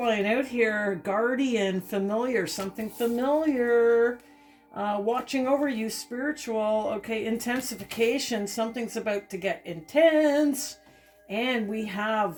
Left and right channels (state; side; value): identical; both; correlation 1.00